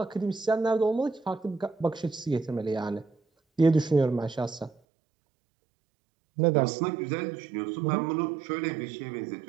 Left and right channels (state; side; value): drops out; left; at 4.8 s